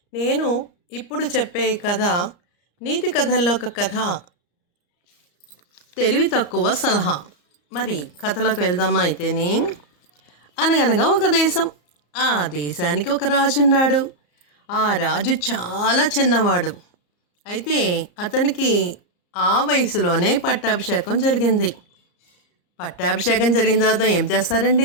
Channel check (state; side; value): late; right; 34 ms